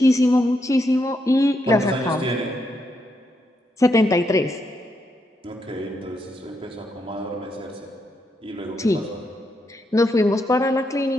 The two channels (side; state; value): both; normal; correlation 0.80